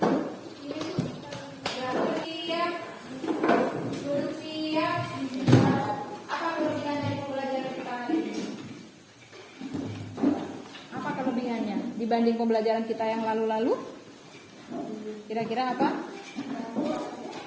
Dibanding pembelajaran kita yang lalu-lalu, kira-kira apa?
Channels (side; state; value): both; identical; correlation 1.00